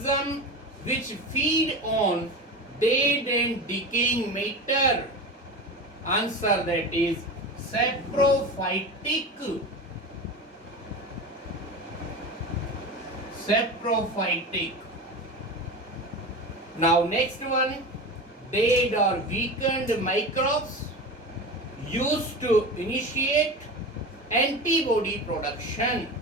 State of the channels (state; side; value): normal; both; correlation 0.28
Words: which feed on dead and decaying matter, Answer, that is saprophytic. Saprophytic. Now next one, dead or weakened microbes used to initiate antibody production.